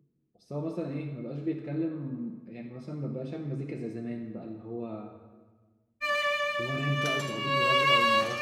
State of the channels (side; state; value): both; identical; correlation 1.00